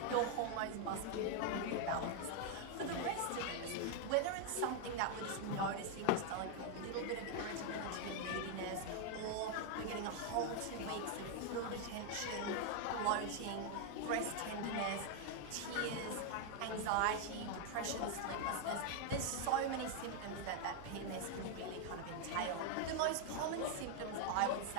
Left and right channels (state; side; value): different; both; correlation 0.00